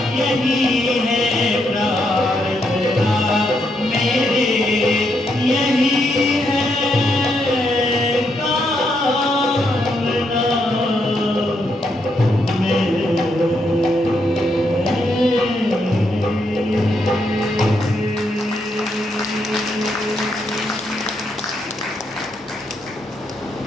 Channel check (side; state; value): both; normal; correlation 0.78